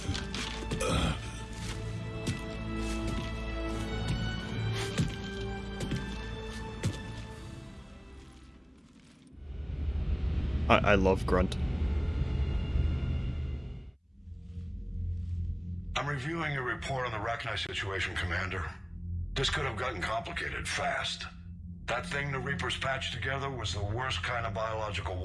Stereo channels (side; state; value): both; identical; correlation 1.00